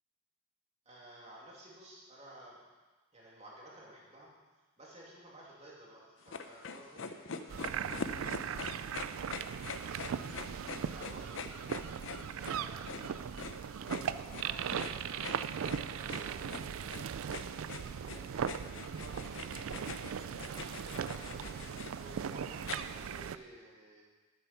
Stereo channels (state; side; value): quieter; left; 4.5 dB